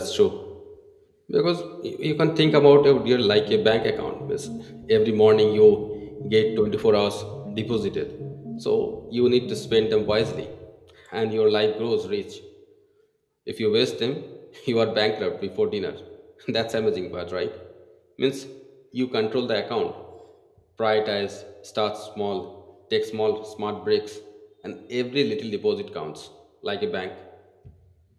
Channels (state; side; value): identical; both; correlation 1.00